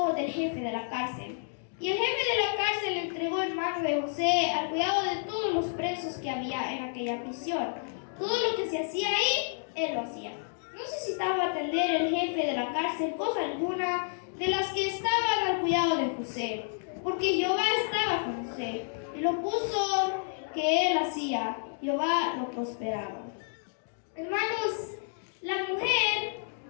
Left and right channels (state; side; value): silent; right; digital silence